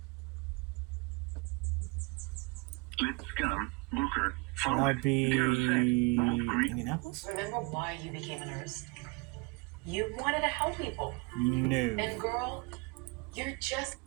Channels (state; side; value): quieter; left; 26.3 dB